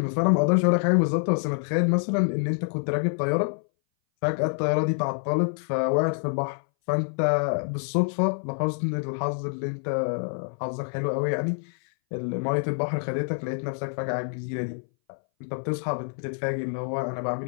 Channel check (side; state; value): right; silent; 59 dB below the other